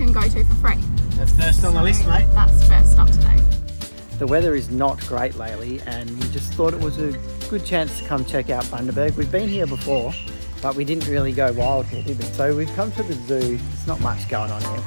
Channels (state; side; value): inverted; both; correlation -1.00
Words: go to for free. That's first on the list, mate. That's first stop today. The weather is not great lately, and we just thought it was a good chance to come check out Bundaberg. We've been here before, but we didn't really go wild here, did we? So we've come to the zoo. There's not much going on here,